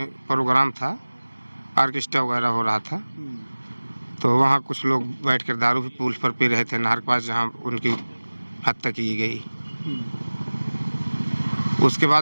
प्रोग्राम था, ऑर्केस्ट्रा वगैरह हो रहा था। तो वहाँ कुछ लोग बैठकर दारू भी पुल पर पी रहे थे, नहर के पास जहाँ उनकी हत्या की गई। उसके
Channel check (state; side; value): inverted; both; correlation -1.00